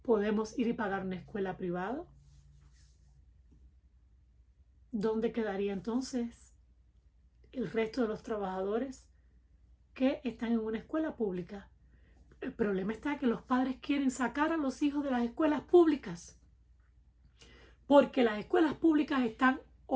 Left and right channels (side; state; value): both; identical; correlation 1.00